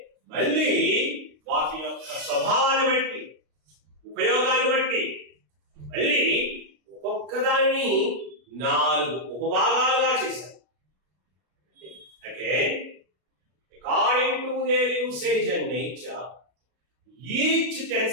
మళ్ళీ వాటి యొక్క స్వభావాన్ని బట్టి, ఉపయోగాన్ని బట్టి మళ్ళీ ఒక్కొక్కదాన్ని 4 ఉపభాగాలుగా చేశారు. Again, according to their usage and nature, each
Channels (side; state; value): left; late; 33 ms